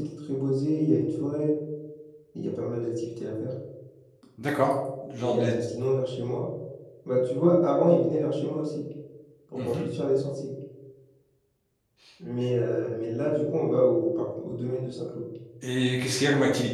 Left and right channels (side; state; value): both; identical; correlation 1.00